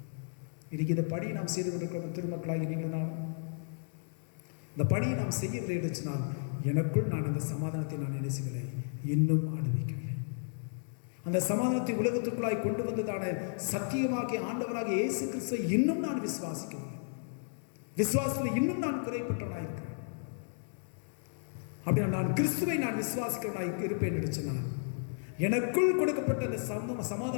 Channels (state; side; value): silent; right; digital silence